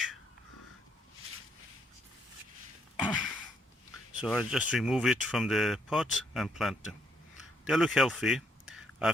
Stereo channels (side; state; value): both; normal; correlation 0.71